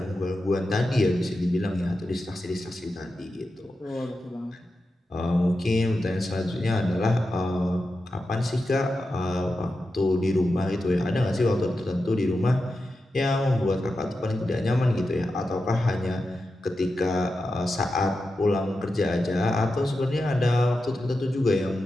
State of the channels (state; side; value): normal; both; correlation 0.90